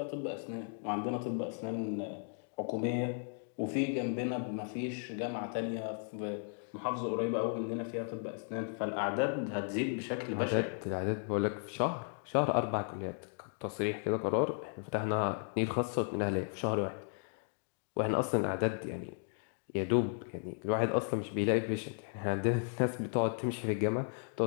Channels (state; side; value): silent; right; 54 dB below the other